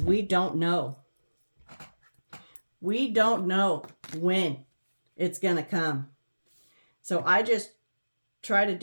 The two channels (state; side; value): inverted; both; correlation -1.00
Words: we don't know. We don't know when it's going to come. So I just try to